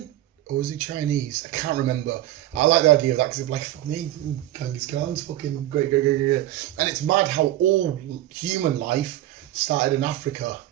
Or was he Chinese? I can't remember. I like the idea of that because it's like, fuck me, Genghis Khan's fucking great. And it's mad how all human life started in Africa.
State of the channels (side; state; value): left; quieter; 14.3 dB